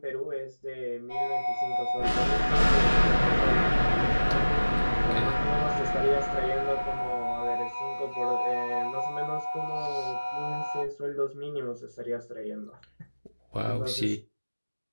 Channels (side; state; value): both; inverted; correlation -1.00